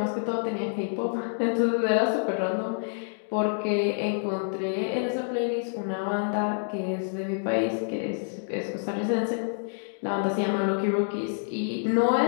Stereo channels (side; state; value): right; silent; digital silence